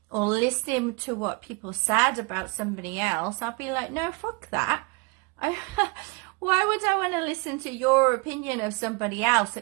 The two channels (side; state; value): left; quieter; 30.3 dB